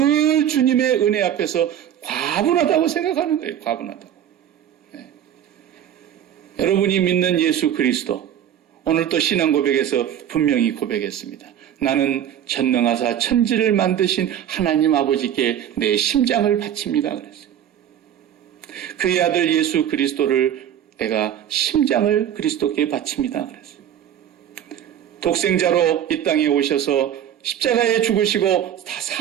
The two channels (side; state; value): left; quieter; 10.2 dB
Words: 주님의 은혜 앞에서 과분하다고 생각하는 거예요. 과분하다고. 여러분이 믿는 예수 그리스도 오늘 또 신앙 고백에서 분명히 고백했습니다. 나는 전능하사 천지를 만드신 하나님 아버지께 내 심장을 바칩니다. 그랬어요. 그의 아들 예수 그리스도를 내가 심장을 그리스도께 바칩니다. 그랬어요. 독생자로 이 땅에 오셔서 십자가에 죽으시고 다